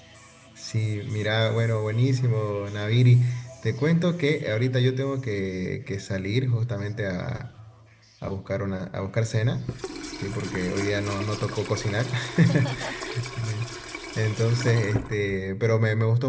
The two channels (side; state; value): both; identical; correlation 1.00